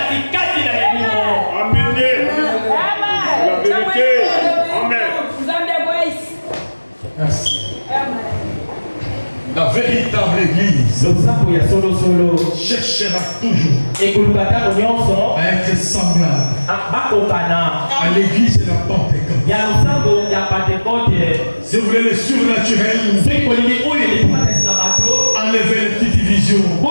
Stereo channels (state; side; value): inverted; both; correlation -1.00